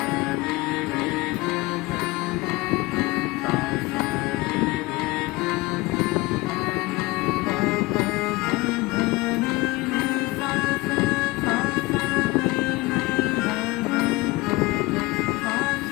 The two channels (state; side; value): quieter; right; 22.0 dB